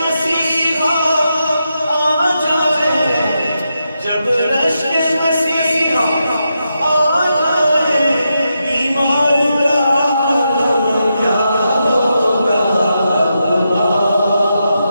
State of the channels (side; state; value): both; inverted; correlation -0.85